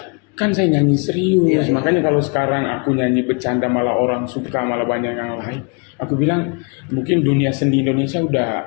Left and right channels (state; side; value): quieter; right; 34.3 dB